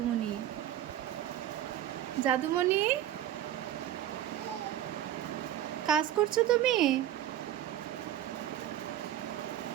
জাদুমণি, কাজ করছো তুমি?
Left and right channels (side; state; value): left; quieter; 11.9 dB